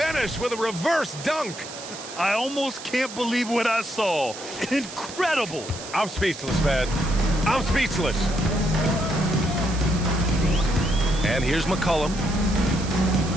with a reverse dunk. I almost can't believe what I saw. Incredible. I'm speechless, man. I'm speechless. And here's McCollum.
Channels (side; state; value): right; noise; hiss, 12 dB below the sound